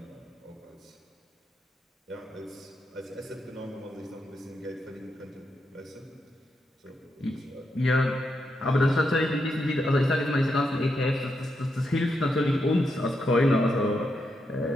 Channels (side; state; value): both; normal; correlation 0.83